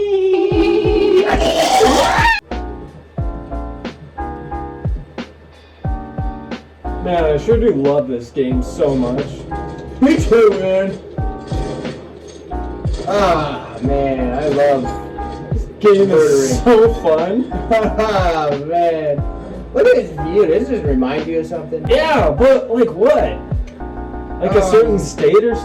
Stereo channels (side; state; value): both; identical; correlation 1.00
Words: Man, I sure do love this game so much. Me too, man. Ah, man, I love This game is so fun. Ah, man. Look at this view. Does this remind you of something? Yeah, but like what? Like a certain state or